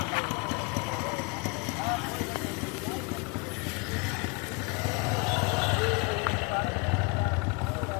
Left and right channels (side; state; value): right; quieter; 28.9 dB